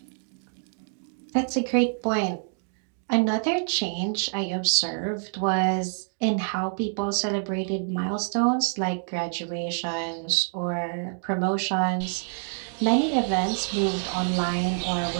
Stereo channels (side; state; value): left; silent; digital silence